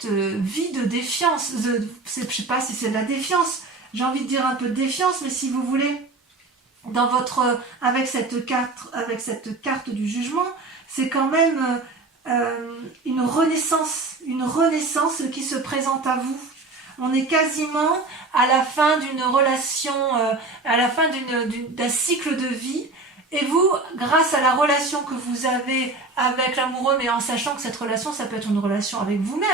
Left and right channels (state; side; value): quieter; left; 3.4 dB